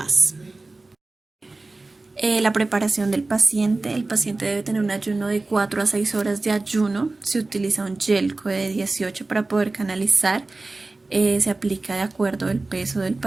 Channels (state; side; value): quieter; left; 3.3 dB